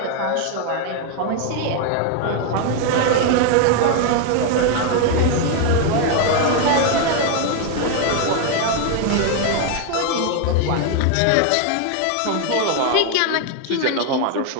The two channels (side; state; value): both; different; correlation 0.01